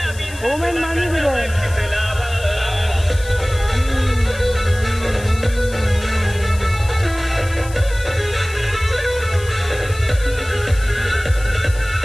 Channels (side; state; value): left; noise; hiss, 17 dB below the sound